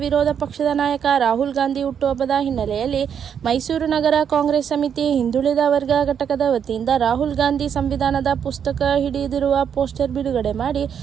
ವಿರೋಧ ಪಕ್ಷದ ನಾಯಕ ರಾಹುಲ್ ಗಾಂಧಿ ಹುಟ್ಟುಹಬ್ಬದ ಹಿನ್ನೆಲೆಯಲ್ಲಿ ಮೈಸೂರು ನಗರ ಕಾಂಗ್ರೆಸ್ ಸಮಿತಿ ಹಿಂದುಳಿದ ವರ್ಗ ಘಟಕದ ವತಿಯಿಂದ ರಾಹುಲ್ ಗಾಂಧಿ ಸಂವಿಧಾನದ ಪುಸ್ತಕ ಹಿಡಿದಿರುವ ಪೋಸ್ಟರ್ ಬಿಡುಗಡೆ ಮಾಡಿ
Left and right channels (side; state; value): left; quieter; 8.0 dB